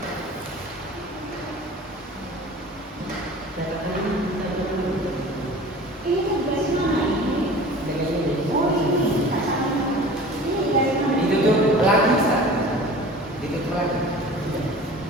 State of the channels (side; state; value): both; normal; correlation 0.41